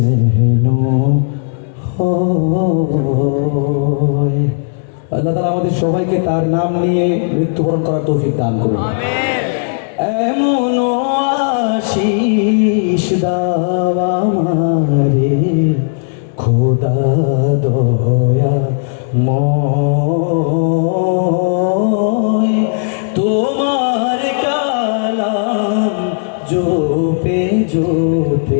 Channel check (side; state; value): right; silent; digital silence